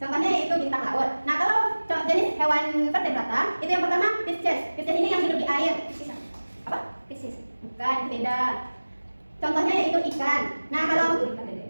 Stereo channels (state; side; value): inverted; both; correlation -1.00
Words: Contohnya yaitu bintang laut. Nah, kalau jenis hewan vertebrata itu yang pertama Pisces. Pisces ini yang hidup di air. Apa? Piscis, Bukan, itu beda. Contohnya yaitu ikan. Nah, kalau